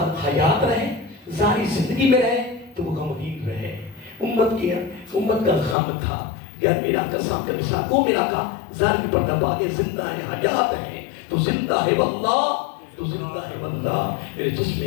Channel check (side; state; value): right; drops out; at 5.8 s